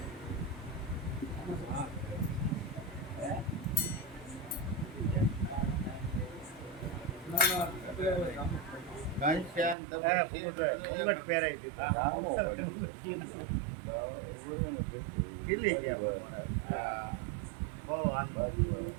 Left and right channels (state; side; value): drops out; left; at 9.8 s